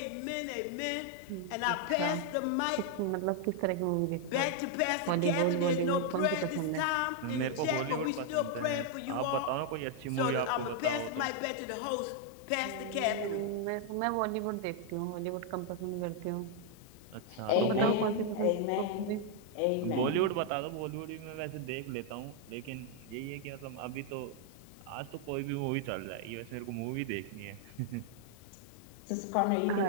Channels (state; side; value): different; both; correlation 0.00